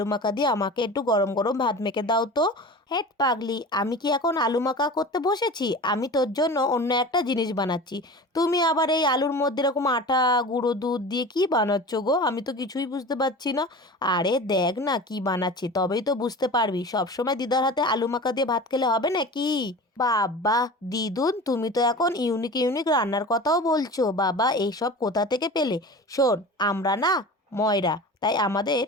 মাখা দিয়ে আমাকে একটু গরম গরম ভাত মেখে দাও তো। হেট পাগলি, আমি কি এখন আলু মাখা করতে বসেছি? আমি তোর জন্য অন্য একটা জিনিস বানাচ্ছি। তুমি আবার এই আলুর মধ্যে এরকম আটা, গুঁড়ো দুধ দিয়ে কি বানাচ্ছ গো? আমি তো কিছুই বুঝতে পারছি না। আরে দেখ না কি বানাচ্ছি, তবেই তো বুঝতে পারবি। সবসময় দিদার হাতে আলু মাখা দিয়ে ভাত খেলে হবে নাকি? বাবা, দিদুন তুমি তো এখন ইউনিক ইউনিক রান্নার কথাও বলছো। বাবা, এইসব কোথা থেকে পেলে? শোন, আমরা না ময়রা, তাই আমাদের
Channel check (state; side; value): normal; both; correlation 0.35